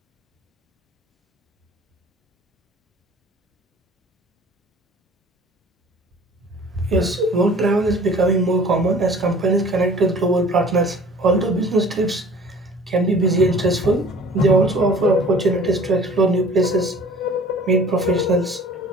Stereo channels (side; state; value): both; normal; correlation 0.48